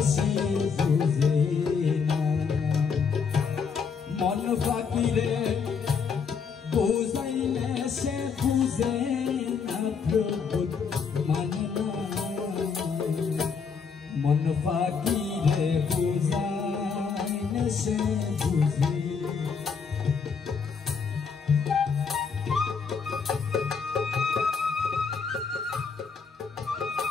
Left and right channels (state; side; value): quieter; right; 5.8 dB